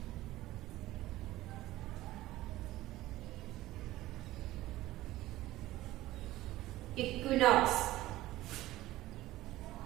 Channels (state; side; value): quieter; left; 16.4 dB